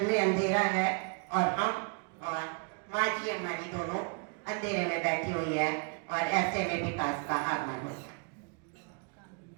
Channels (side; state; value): left; quieter; 35.9 dB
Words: में अंधेरा है और हम और माँ जी हमारी दोनों अंधेरे में बैठी हुई है और ऐसे में विकास का आगमन हो गया।